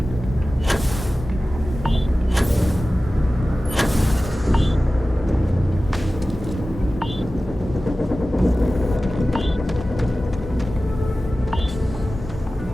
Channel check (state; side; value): normal; both; correlation 0.96